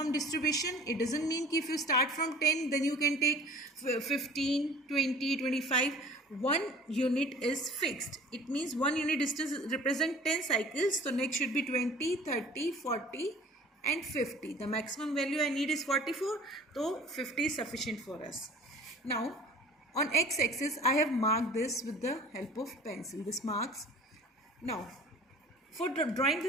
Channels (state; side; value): normal; both; correlation 0.47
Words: distribution. It doesn't mean if you start from 10, then you can take 15, 20, 25. One unit is fixed. It means one unit distance represents 10 cycles. So next should be 20, 30, 40 and 50. The maximum value I need is 44. So 50 is sufficient for us. Now on x-axis, I have marked this with the help of pencil. This marks. Now for drawing